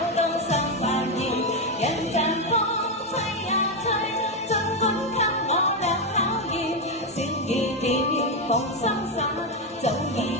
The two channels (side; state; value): both; normal; correlation 0.06